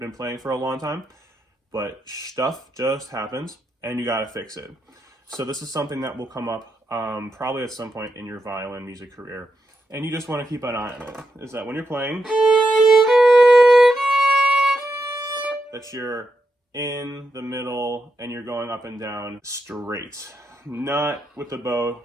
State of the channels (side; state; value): both; normal; correlation 0.84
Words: playing for a long time, but stuff just happens and you got to fix it. So this is something that will come up probably at some point in your violin music career. And you just want to keep an eye on it. Is that when you're playing, that you're in the middle and you're going up and down straight. Not with the bow,